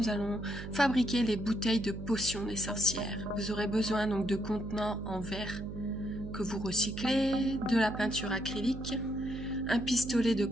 allons fabriquer les bouteilles de potions des sorcières. Vous aurez besoin donc de contenants en verre que vous recyclez, de la peinture acrylique, un pistolet de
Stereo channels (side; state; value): right; noise; hum, 9 dB below the sound